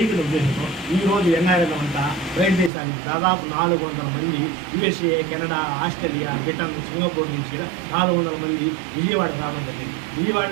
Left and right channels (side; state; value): left; drops out; at 2.7 s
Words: ఉద్దేశంతో ఈరోజు ఎన్ఆర్ఎల్ అంతా బయట దేశానికి దాదాపు 400 మంది USA, Canada, Australia, Britain, Singapore నుంచి 400 మంది విజయవాడ రావడం జరిగింది. విజయవాడ